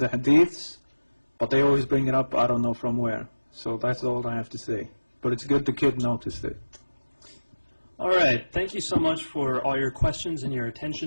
hadiths, but they always bring it up, I don't know from where. So that's all I have to say. But it's good the kid noticed it. All right. Thank you so much for all your questions and your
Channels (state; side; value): inverted; both; correlation -1.00